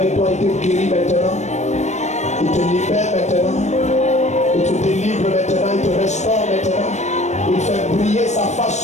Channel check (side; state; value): right; late; 0.34 ms